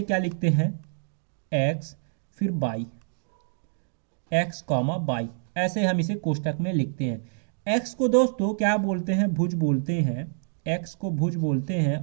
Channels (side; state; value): left; silent; digital silence